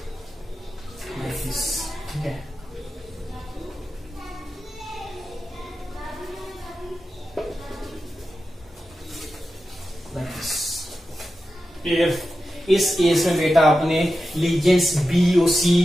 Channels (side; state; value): both; normal; correlation 0.91